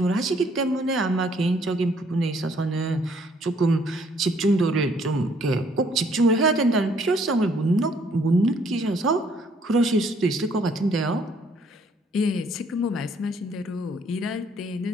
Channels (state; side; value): normal; both; correlation 0.64